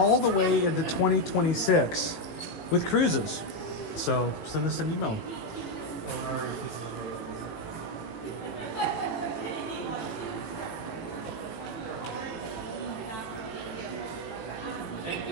the way into 2026 with cruises. So send us an email.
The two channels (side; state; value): right; late; 18 ms